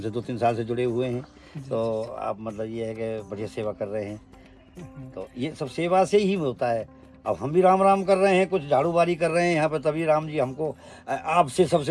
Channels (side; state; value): both; identical; correlation 1.00